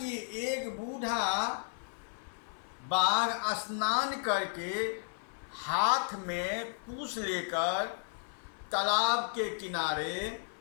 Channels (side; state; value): right; silent; 55 dB below the other